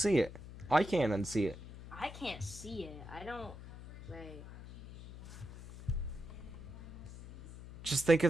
it. I can't unsee it. I can't see it. I don't. Wait. Just think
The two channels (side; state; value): left; noise; hum, 14 dB below the sound